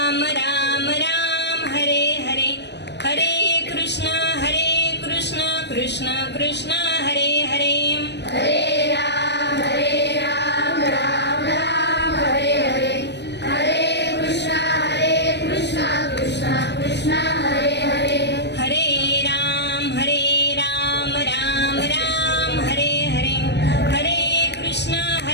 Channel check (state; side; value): late; right; 0.50 ms